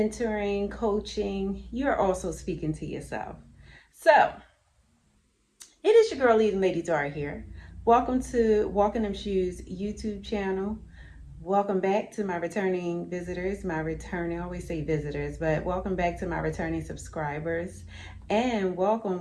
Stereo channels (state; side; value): identical; both; correlation 1.00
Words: coaching, you're also speaking to yourself? So, it is your girl, leading Lady Dara here. Welcome to Walking Them Shoes YouTube channel. Welcome back to my returning visitors, I always say visitors, but welcome back to my returning subscribers. And welcome